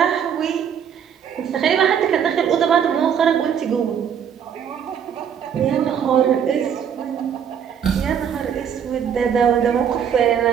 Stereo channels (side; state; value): left; quieter; 8.2 dB